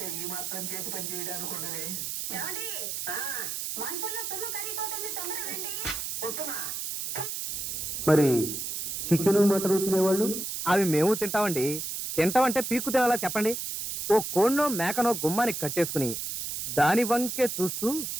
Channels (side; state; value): right; noise; hiss, 4 dB below the sound